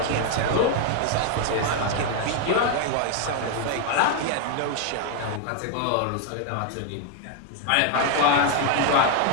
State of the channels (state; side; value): different; both; correlation 0.01